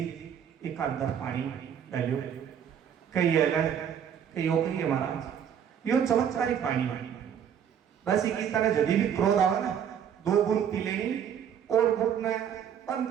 एक अंदर पानी डालो कई अलग कई है महाराज यो चमत्कारी पानी है। बस इसी तरह जब भी क्रोध आवे ना 2 बूंद पी लेनी और घुटना बंद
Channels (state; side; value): quieter; left; 8.5 dB